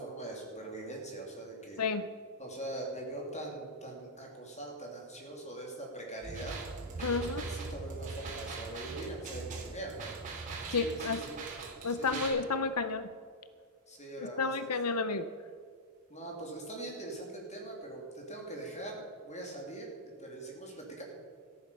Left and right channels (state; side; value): normal; both; correlation -0.08